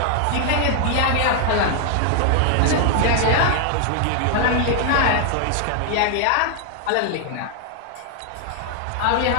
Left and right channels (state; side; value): different; both; correlation 0.00